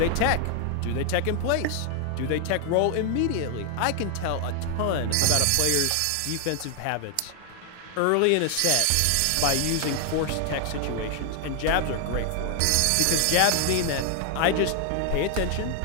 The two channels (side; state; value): both; different; correlation 0.00